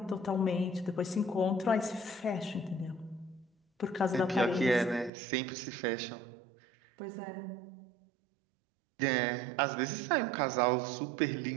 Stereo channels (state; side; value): drops out; left; at 5.1 s